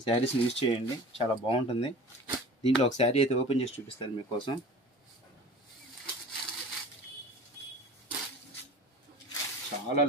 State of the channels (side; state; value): both; normal; correlation 0.40